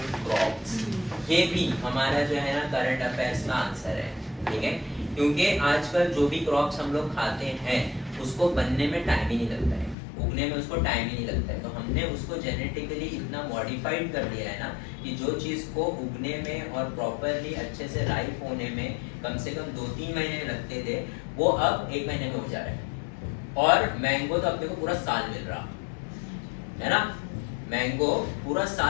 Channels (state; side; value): drops out; right; at 10.0 s